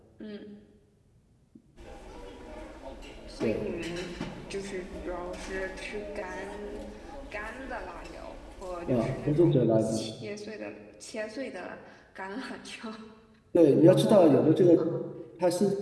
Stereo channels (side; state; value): both; identical; correlation 1.00